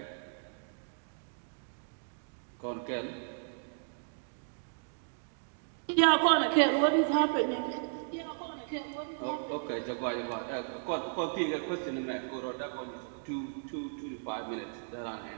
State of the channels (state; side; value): silent; left; digital silence